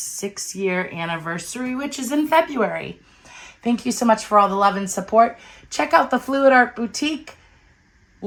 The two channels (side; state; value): both; identical; correlation 1.00